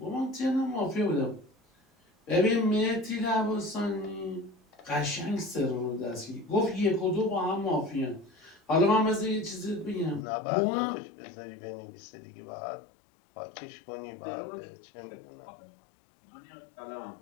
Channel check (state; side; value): drops out; right; at 10.2 s